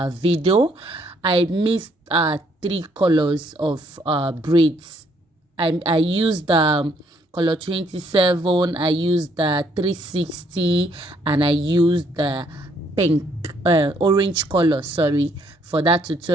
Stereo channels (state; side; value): normal; both; correlation 0.68